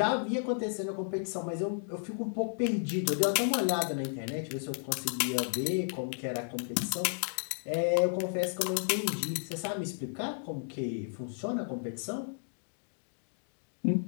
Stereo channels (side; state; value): right; silent; digital silence